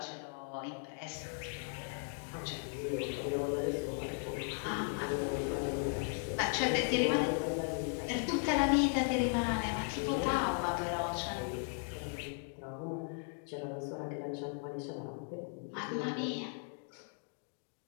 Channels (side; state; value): right; silent; 53 dB below the other